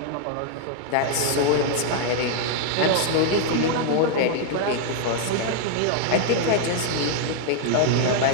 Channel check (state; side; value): different; both; correlation 0.00